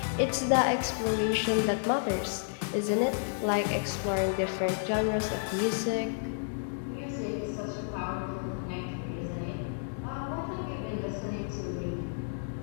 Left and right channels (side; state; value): right; silent; digital silence